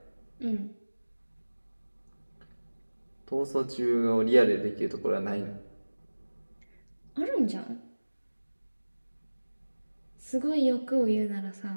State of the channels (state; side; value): inverted; both; correlation -1.00